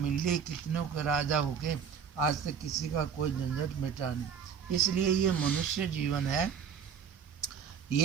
ली, कितनों के राजा हो गए, आज तक किसी का कोई झंझट मिटा नहीं। इसलिए ये मनुष्य जीवन है,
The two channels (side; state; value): left; quieter; 7.3 dB